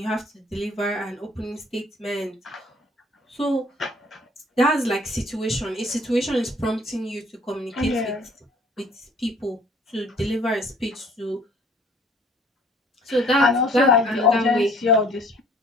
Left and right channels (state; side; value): normal; both; correlation 0.56